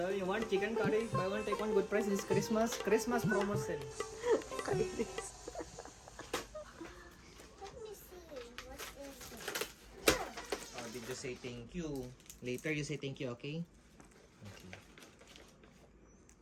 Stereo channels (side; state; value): both; identical; correlation 1.00